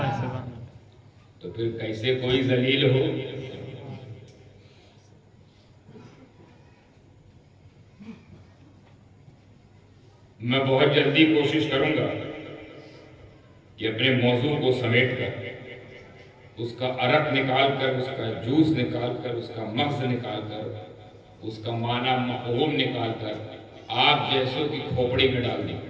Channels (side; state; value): both; identical; correlation 1.00